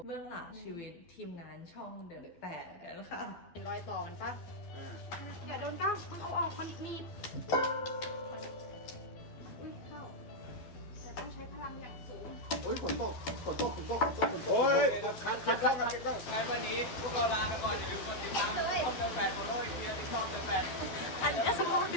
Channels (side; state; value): right; late; 12 ms